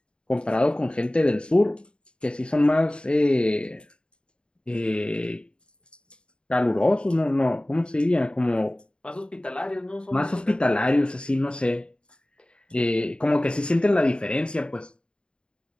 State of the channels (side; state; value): right; late; 0.052 ms